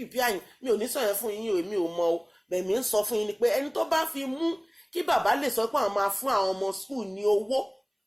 àyìn mi ò ní sọ yẹn fún yín o èmi ò mọ o bẹ̀mí ń sọ fún yín ni pé ẹni tó bá fi mú kí bàbá lè sọ pé àwọn máa fún àwọn ọmọ skul ní owó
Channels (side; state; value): both; identical; correlation 1.00